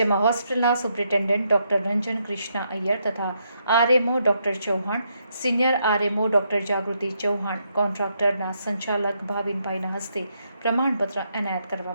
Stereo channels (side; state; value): both; inverted; correlation -0.78